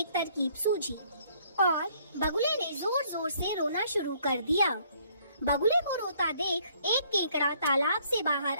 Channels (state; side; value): inverted; both; correlation -0.64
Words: तरकीब सूझी और बगुले ने जोर जोर से रोना शुरू कर दिया। बगुले को रोता देख एक केकड़ा तालाब से बाहर